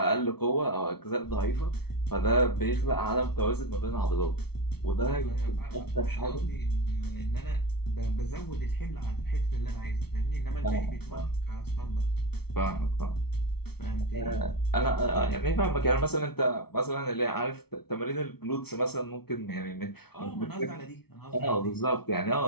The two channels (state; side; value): late; right; 0.96 ms